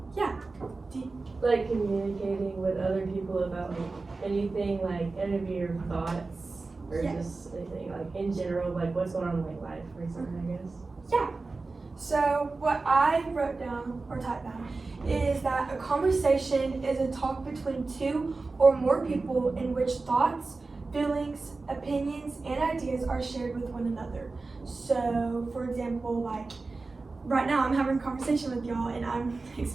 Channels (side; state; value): left; quieter; 3.7 dB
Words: Yeah. Like communicating with other people about like anything, like any of your thoughts, or Yes. just anything like in general, like what's going on in like life or something, I guess. Yeah. So what I wrote down or typed down is that a conversation is a talk between two or more people in which thoughts, feelings, opinions, and ideas are shared with one another. So, for example, like right now I'm having a conversation with y'all and I'm